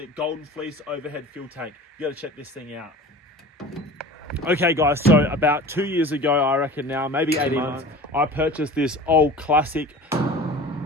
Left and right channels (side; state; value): both; normal; correlation 0.39